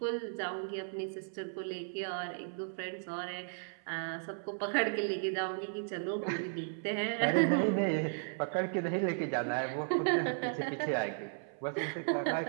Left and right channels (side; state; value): left; silent; 54 dB below the other